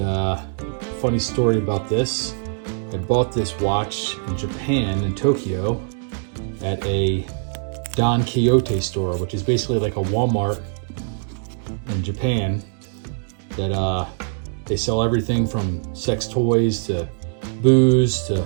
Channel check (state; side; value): silent; left; digital silence